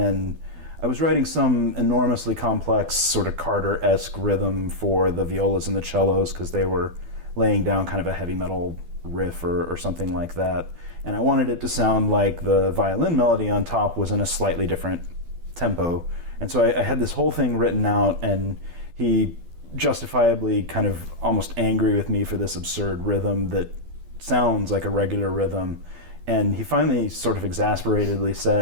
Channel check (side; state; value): left; late; 12 ms